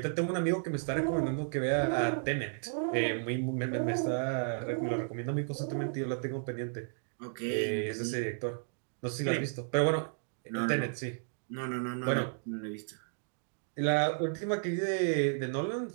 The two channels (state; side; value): silent; left; digital silence